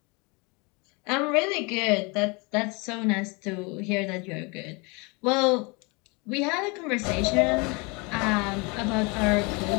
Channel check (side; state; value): right; quieter; 29.3 dB